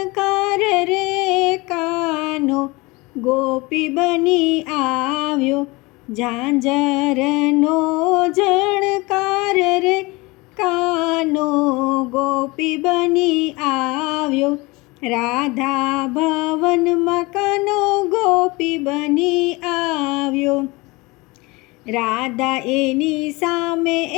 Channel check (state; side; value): quieter; right; 24.0 dB